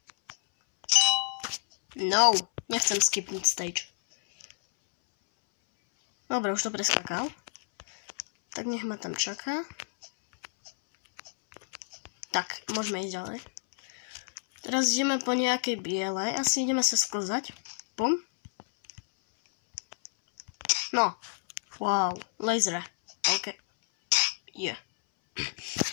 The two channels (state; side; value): silent; right; 58 dB below the other